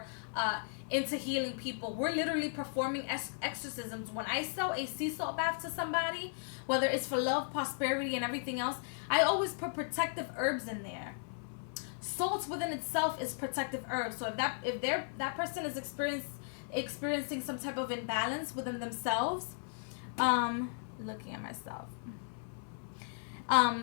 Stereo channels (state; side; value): silent; right; 54 dB below the other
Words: into healing people, we're literally performing exorcisms. When I sell a sea salt bath to somebody, whether it's for love, prosperity, and everything else, I always put protective herbs in there. Salt within itself is protective herb. So if that person is experiencing some type of imbalance within themselves, looking at myself,